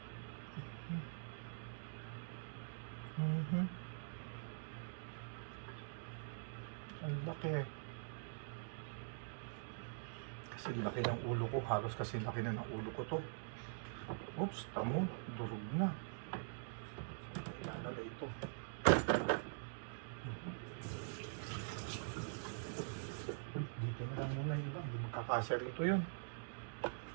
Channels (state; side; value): silent; left; digital silence